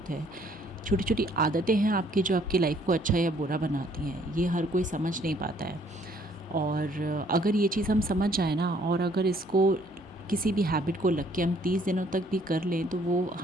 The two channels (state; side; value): normal; both; correlation 0.63